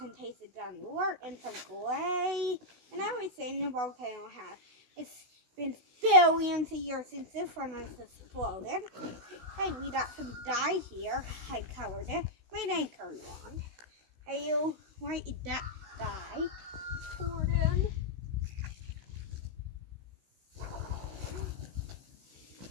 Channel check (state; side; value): late; left; 16 ms